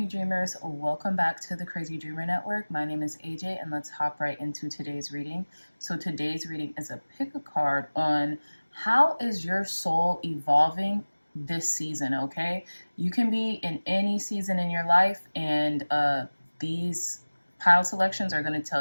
Dreamers, welcome back to the Crazy Dreamer Network. My name is AJ and let's hop right into today's reading. So today's reading is a pick a card on how is your soul evolving this season, okay? You can be in any season in your life and these pile selections are going to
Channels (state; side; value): inverted; both; correlation -1.00